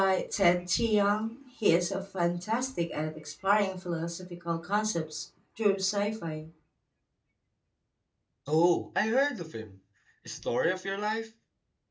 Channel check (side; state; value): both; identical; correlation 1.00